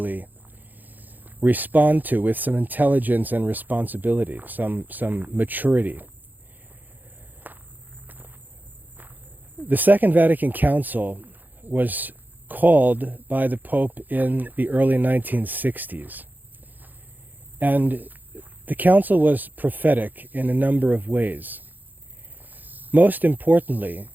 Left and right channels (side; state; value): left; late; 0.085 ms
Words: respond to with some intelligence and responsibility, some maturity. The Second Vatican Council was called by the Pope in the early 1960s. And the council was prophetic in a number of ways. Most importantly,